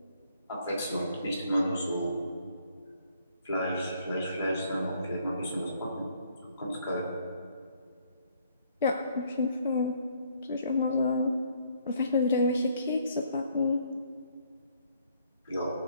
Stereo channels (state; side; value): inverted; both; correlation -0.66